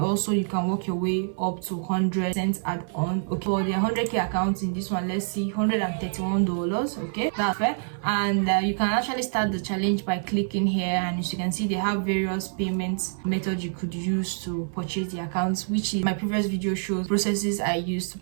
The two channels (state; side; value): silent; left; 55 dB below the other